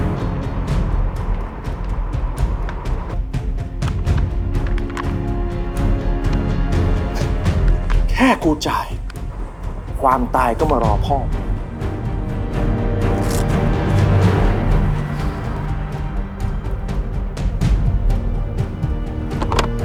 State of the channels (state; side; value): identical; both; correlation 1.00